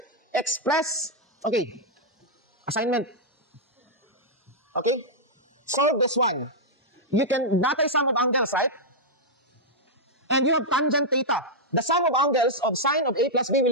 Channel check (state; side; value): normal; both; correlation -0.06